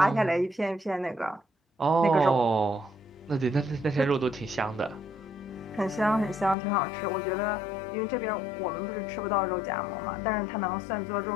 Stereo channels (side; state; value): right; drops out; at 6.6 s